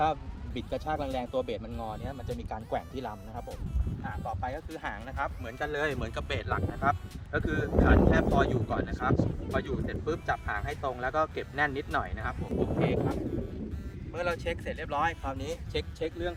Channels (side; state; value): both; identical; correlation 1.00